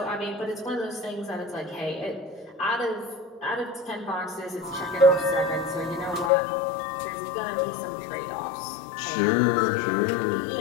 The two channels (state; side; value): drops out; right; at 6.3 s